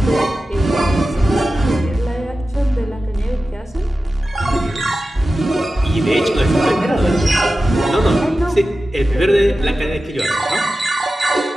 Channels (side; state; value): both; normal; correlation 0.94